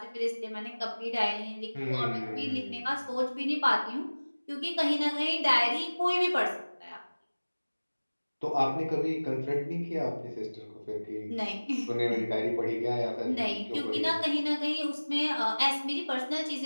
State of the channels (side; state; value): both; inverted; correlation -1.00